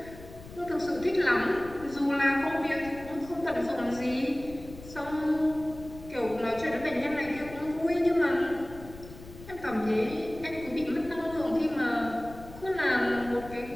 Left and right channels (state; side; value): noise; left; rumble, 16 dB below the sound